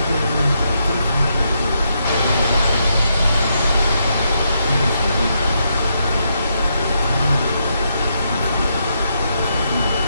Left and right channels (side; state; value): both; inverted; correlation -0.79